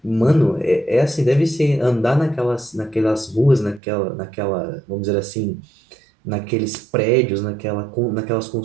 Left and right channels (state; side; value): drops out; left; at 3.8 s